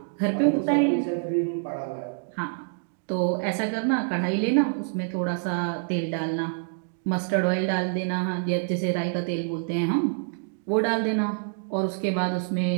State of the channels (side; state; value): left; silent; digital silence